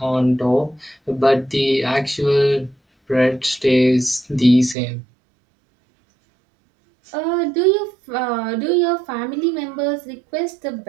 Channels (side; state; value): left; drops out; at 4.8 s